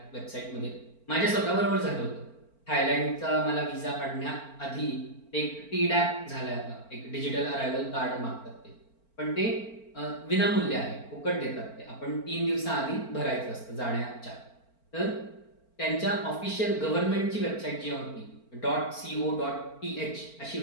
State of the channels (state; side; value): late; right; 4.4 ms